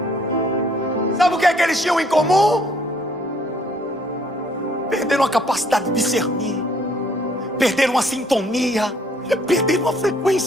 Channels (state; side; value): normal; both; correlation 0.63